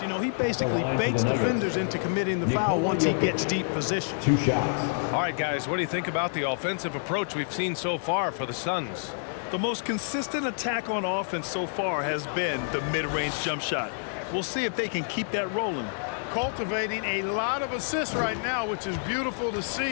You know, he basically baits defenders into committing the foul once he gets deep position. 2 shots. All right, guys, what do you think about the offensive approach we've seen so far for the Suns? The most consistent attack on offense so far has been the mid-range jump shot. We'll see if they can keep that rolling. Cultivating a lot of assists right now, which is beautiful to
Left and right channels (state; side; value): silent; right; digital silence